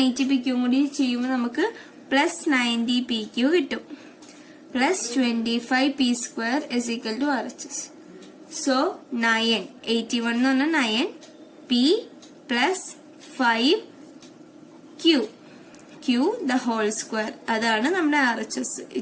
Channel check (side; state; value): both; identical; correlation 1.00